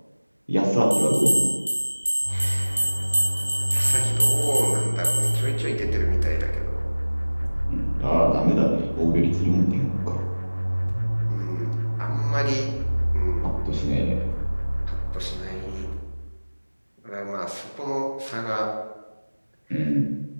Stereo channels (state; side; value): inverted; both; correlation -1.00